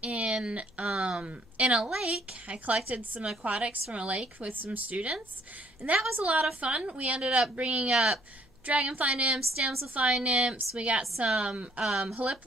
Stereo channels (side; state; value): left; noise; hum, 30 dB below the sound